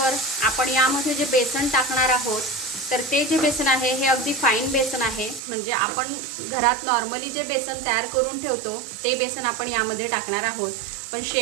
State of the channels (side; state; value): left; drops out; at 5.4 s